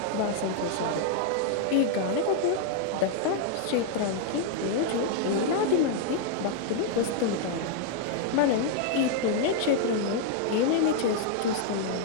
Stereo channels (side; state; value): both; different; correlation 0.00